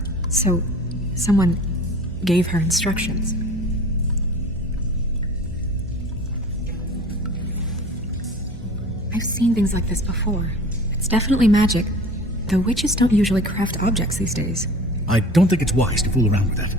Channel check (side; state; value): right; noise; hum, 15 dB below the sound